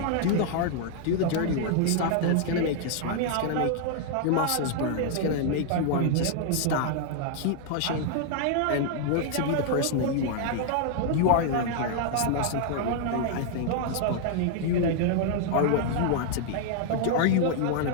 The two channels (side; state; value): both; different; correlation 0.00